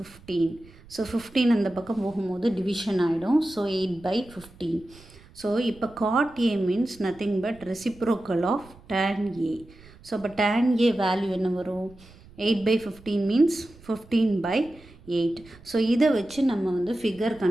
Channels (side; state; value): right; noise; rumble, 23 dB below the sound